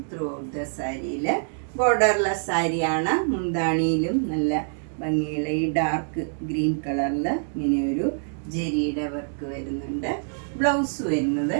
ത്രൂ ഔട്ട് ദ സാരിയിൽ. ബോർഡർലെസ് സാരിയാണ്. മുന്താണിയിലും നല്ല ഭംഗിയുള്ള ഈ ഡാർക്ക് ഗ്രീൻ കളറിൽ ഇങ്ങനെ ഒരു ജെരിയുടെ വർക്ക് വരുന്നുണ്ട്. ബ്ലൗസ് വരുന്നത്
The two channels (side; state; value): left; silent; digital silence